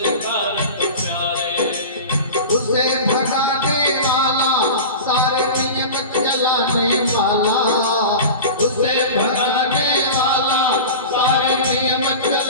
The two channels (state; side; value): inverted; both; correlation -0.31